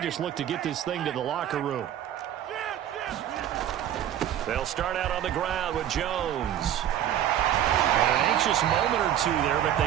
look to get this thing to the locker room. They'll start out on the ground with Jones. And an anxious moment or two there, but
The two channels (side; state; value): left; quieter; 11.1 dB